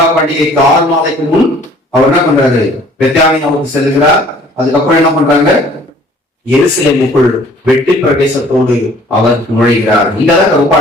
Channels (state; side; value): normal; both; correlation 0.54